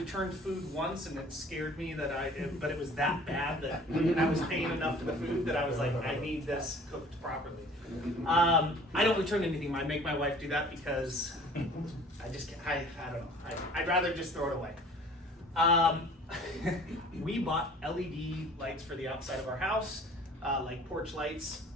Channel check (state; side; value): normal; both; correlation 0.49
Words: food once, and it scared me but it was that bad that I was paying enough for the food that I was like, I need this cooked properly. I don't return anything. I make my wife do that because I just can't, I don't know. I'd rather just throw it away. We bought LED lights for the outside of our house, like porch lights,